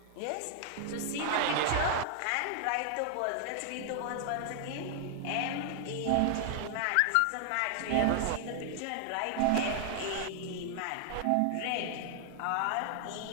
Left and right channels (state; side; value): different; both; correlation 0.00